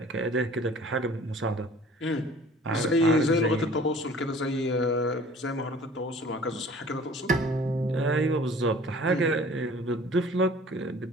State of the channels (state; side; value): normal; both; correlation 0.49